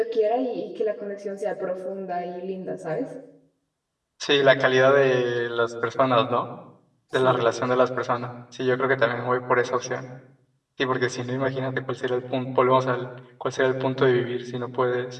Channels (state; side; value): identical; both; correlation 1.00